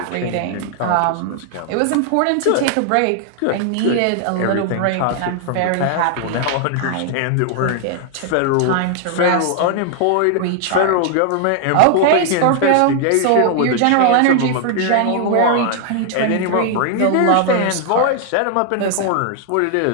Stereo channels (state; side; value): different; both; correlation 0.00